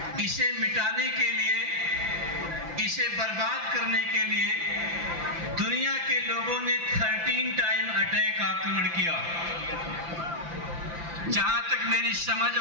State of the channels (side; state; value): left; late; 5.9 ms